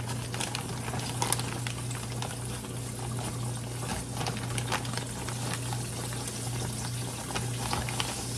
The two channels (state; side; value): identical; both; correlation 1.00